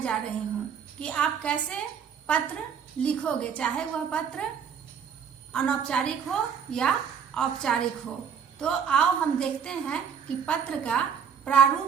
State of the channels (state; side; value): quieter; left; 7.3 dB